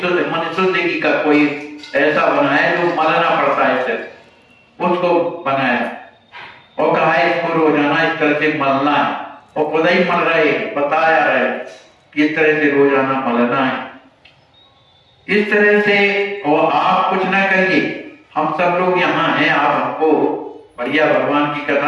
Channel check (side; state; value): both; identical; correlation 1.00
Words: शुद्ध का कोई ऐसा बनाया जो मलना पड़ता है सिर्फ, उसको बनाया और कहा इसको रोजाना इस तरह से मलना है। और खुद ही मल रहे, बताया रहे कि इस तरह से रोजाना मलना है, इस तरह से। और आप कुछ ना करिए, हम सब लोग यहाँ हैं, आप हमको बढ़िया भगवान की